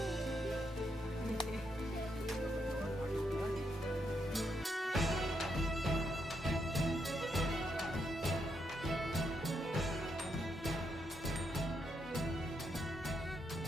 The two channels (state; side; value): normal; both; correlation 0.79